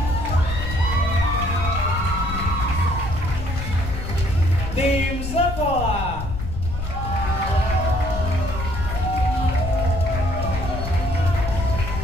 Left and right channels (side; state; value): left; noise; rumble, 5 dB below the sound